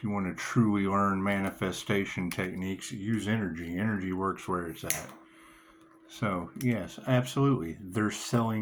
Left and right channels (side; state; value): both; identical; correlation 1.00